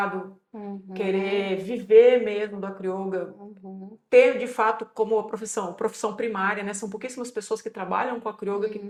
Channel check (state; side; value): identical; both; correlation 1.00